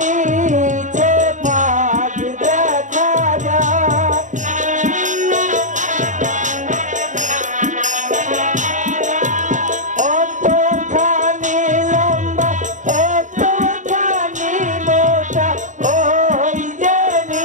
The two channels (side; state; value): left; late; 0.36 ms